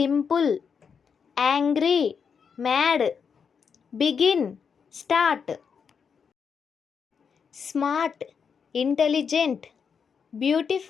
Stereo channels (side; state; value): right; quieter; 6.4 dB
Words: Angry, mad. Begin, start. Smart, intelligent.